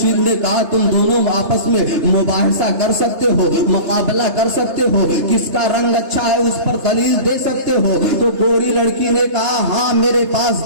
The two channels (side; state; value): left; late; 3.3 ms